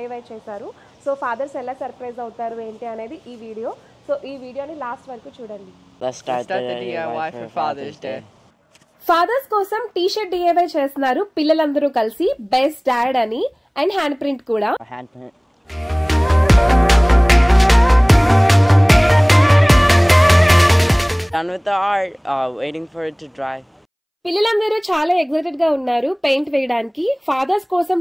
చేశారు. సో ఫాదర్స్ ఎలా సర్ప్రైజ్ అవుతారు ఏంటి అనేది ఈ వీడియో. సో ఈ వీడియోని లాస్ట్ వరకు చూడండి. Let's start the DIY for Father's Day. Father's కోసం టీ-షర్ట్ DIY చేస్తున్నారు పిల్లలందరూ కలిసి, బెస్ట్ డాడ్ అని, అండ్ హ్యాండ్ ప్రింట్ కూడా. Done with the art, waiting for it to dry. పిల్లలందరూ చాలా ఎక్సైటెడ్ గా ఉన్నారు పెయింట్ వేయడానికి. ఫాదర్స్ కోసం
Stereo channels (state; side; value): identical; both; correlation 1.00